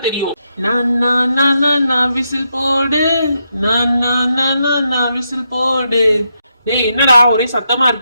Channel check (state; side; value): inverted; both; correlation -0.82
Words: தெரியும். நான் விசில் போடு, நான் விசில் போடு. டேய் என்னடா ஒரே சத்தமா